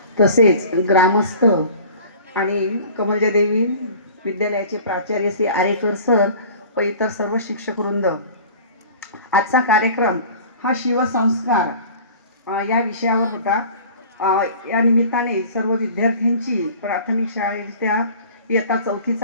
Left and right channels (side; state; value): both; inverted; correlation -0.43